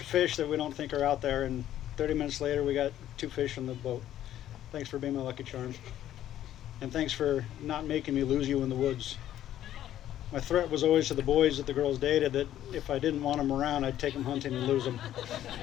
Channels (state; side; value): quieter; right; 12.1 dB